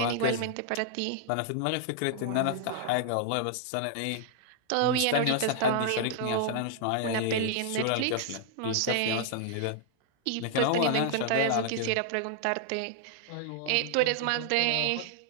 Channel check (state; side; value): different; both; correlation -0.01